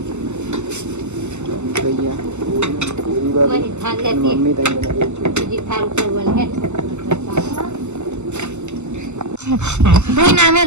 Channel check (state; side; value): late; left; 0.83 ms